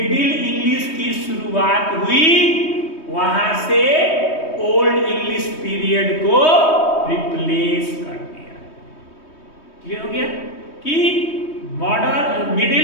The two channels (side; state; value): right; late; 3.2 ms